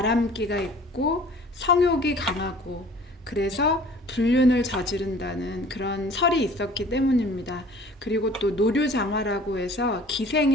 있고 성욕이 강하고, 그래서 불륜을 저지른다는 그런 설이 있었기 때문입니다. 그리고 또 노류장화라고 해서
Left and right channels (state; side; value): normal; both; correlation 0.49